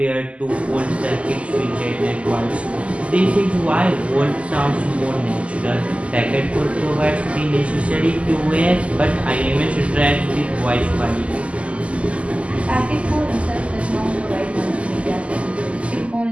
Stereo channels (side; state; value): left; late; 0.061 ms